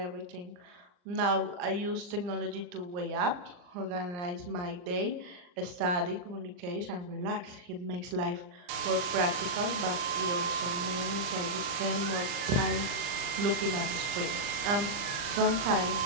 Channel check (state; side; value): late; left; 40 ms